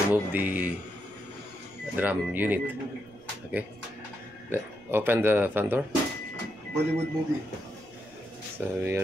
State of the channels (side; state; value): right; noise; rumble, 29 dB below the sound